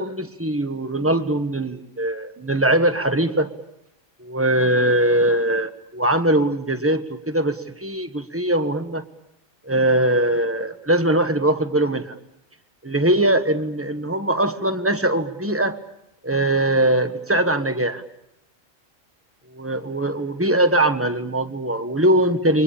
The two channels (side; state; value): both; normal; correlation -0.09